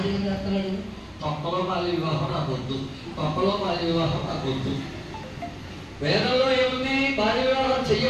అతడు తొక్కలో బాల్య వివాహం నాకు వద్దు, తొక్కలో బాల్య వివాహం నాకు వద్దు. వేదంలో ఏముంది? బాల్య వివాహం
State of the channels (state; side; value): identical; both; correlation 1.00